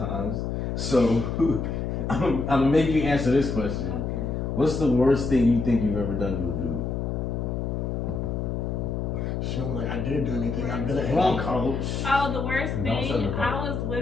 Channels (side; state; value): left; noise; hum, 2 dB below the sound